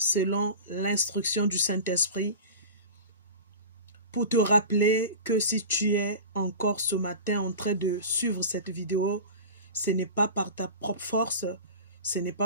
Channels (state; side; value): inverted; both; correlation -0.33